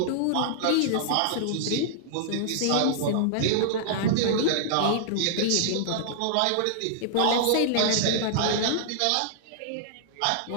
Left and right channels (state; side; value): different; both; correlation -0.01